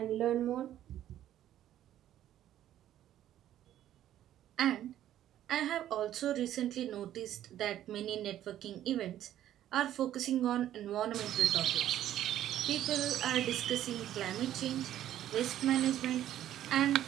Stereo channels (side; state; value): left; quieter; 12.0 dB